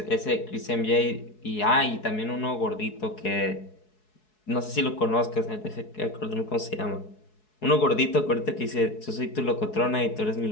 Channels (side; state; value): right; late; 4.7 ms